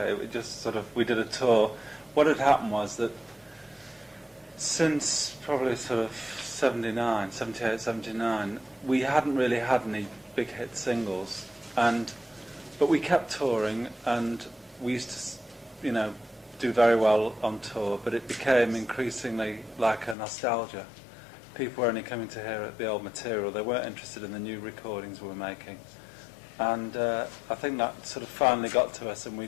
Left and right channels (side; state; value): right; drops out; at 20.2 s